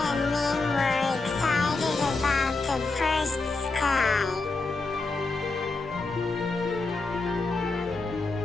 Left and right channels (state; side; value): quieter; right; 3.6 dB